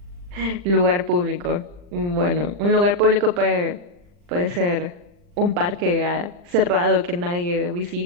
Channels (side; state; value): left; late; 40 ms